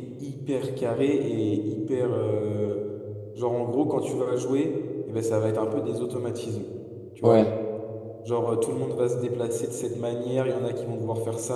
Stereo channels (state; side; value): identical; both; correlation 1.00